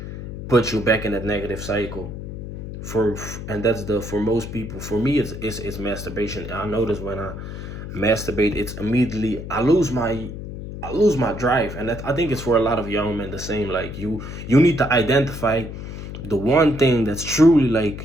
puts you back in that negative cycle. And that's for most people. For me, it's masturbation. I notice when I masturbate, it's immediately I lose my drive. And I think it's for a lot of young men the same. Like, you need to identify the one thing that's truly,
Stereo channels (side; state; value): left; noise; hum, 9 dB below the sound